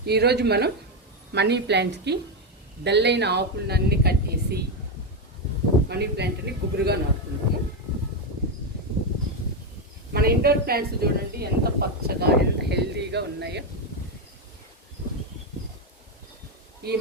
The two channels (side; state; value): both; normal; correlation 0.07